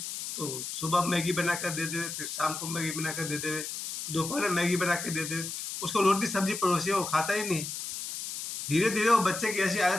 तो सुबह मैगी बना कर दे दे, फिर शाम को मैगी बना कर दे दे, दोपहर में मैगी बना के दे दे। उसको रोटी सब्जी परोसिए, वो खाता ही नहीं। धीरे धीरे वो बच्चे की ऐसी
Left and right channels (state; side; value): noise; left; hiss, 6 dB below the sound